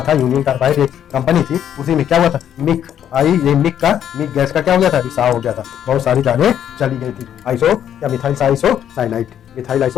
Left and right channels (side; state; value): right; quieter; 9.8 dB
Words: था। यूनियन कार्बाइड एक कंपनी थी, उसी में क्या हुआ था? मिक मिक गैस का क्या हो गया था? रिसाव हो गया था, बहुत सारी जानें चली गई थी। मिथाइल